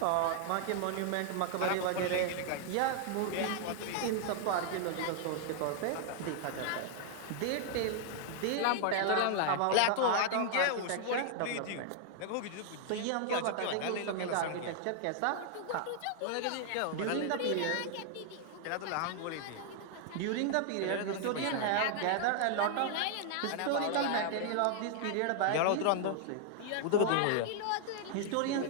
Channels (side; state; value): both; different; correlation 0.00